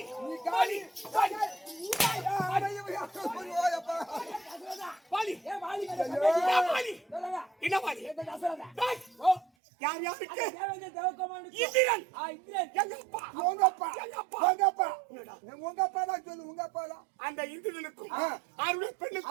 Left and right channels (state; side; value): drops out; left; at 9.5 s